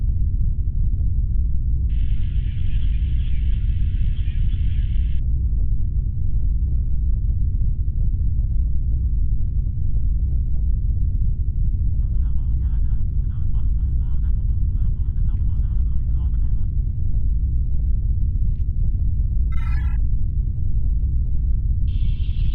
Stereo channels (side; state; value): both; identical; correlation 1.00